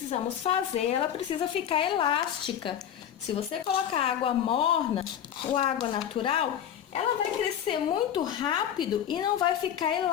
fazer, ela precisa ficar elástica. Se você colocar água morna ou água natural, ela vai crescer muito rápido e não vai ficar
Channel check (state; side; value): quieter; right; 9.7 dB